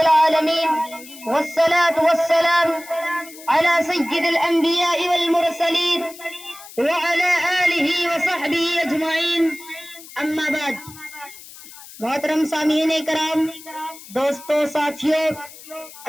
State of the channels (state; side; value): noise; left; hiss, 18 dB below the sound